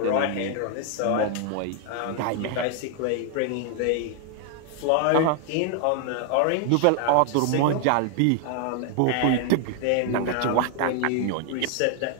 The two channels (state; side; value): different; both; correlation 0.00